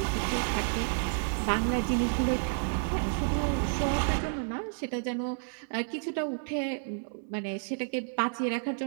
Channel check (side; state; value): left; silent; 57 dB below the other